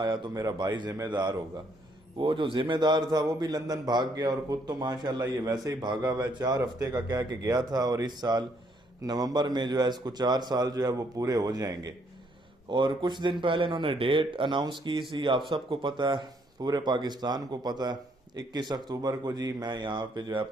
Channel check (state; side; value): normal; both; correlation 0.69